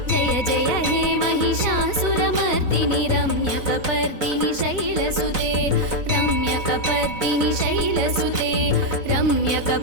जय जय हे महिषासुरमर्दिनि रम्यकपर्दिनि शैलसुते रम्यकपर्दिनि शैलसुते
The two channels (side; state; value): left; late; 4.0 ms